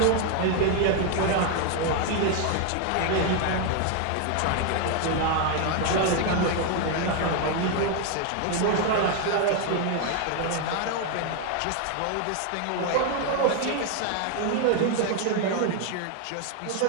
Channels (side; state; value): both; different; correlation 0.01